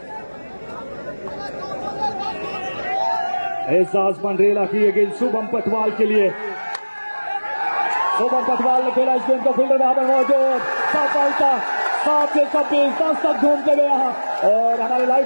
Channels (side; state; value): both; inverted; correlation -1.00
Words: एहसास पंडरेला की ये गेंद शुभम पटवाल के लिए। शुभम पटवाल ने खेला इस गेंद को, फील्डर वहां पर मौजूद, सफलता 7 से 26 10 तक घूमते हुए यहां और हमारे